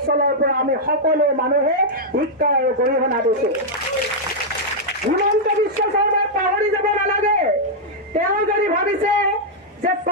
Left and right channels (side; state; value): both; normal; correlation -0.05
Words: পৰা আমি সকলো মানুহে শিক্ষা আৰু গৰিহণা দিছোঁ। হিমন্ত বিশ্ব শৰ্মাক পাহৰি যাব নালাগে। তেওঁ যদি ভাবিছে যে